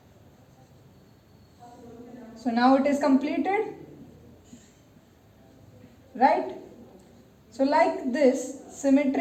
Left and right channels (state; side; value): identical; both; correlation 1.00